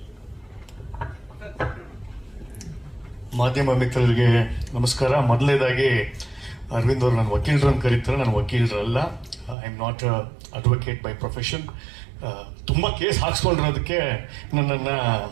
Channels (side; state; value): left; drops out; at 9.6 s